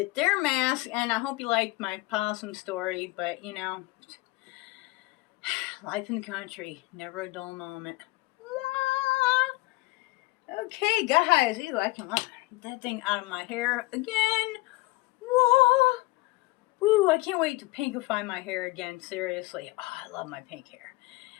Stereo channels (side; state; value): right; quieter; 21.1 dB